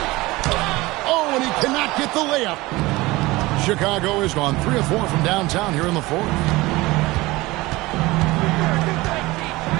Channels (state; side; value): quieter; left; 20.5 dB